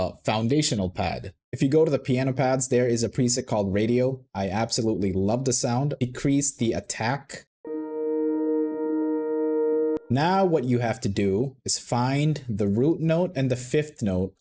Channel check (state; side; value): identical; both; correlation 1.00